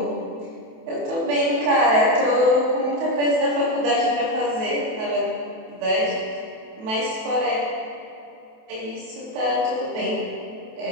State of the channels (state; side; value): late; left; 28 ms